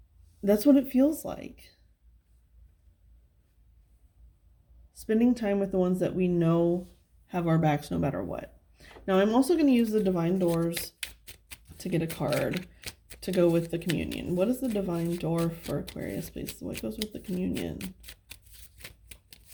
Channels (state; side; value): identical; both; correlation 1.00